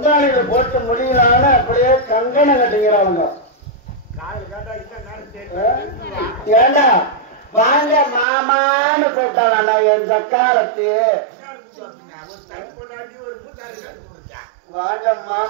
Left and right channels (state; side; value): drops out; left; at 8.2 s